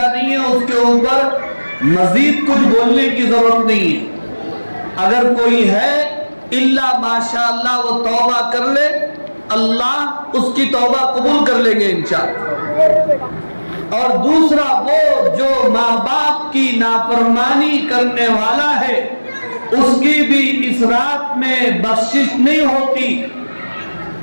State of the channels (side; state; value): both; inverted; correlation -1.00